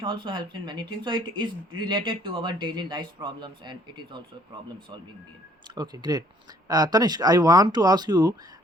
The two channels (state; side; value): normal; both; correlation 0.61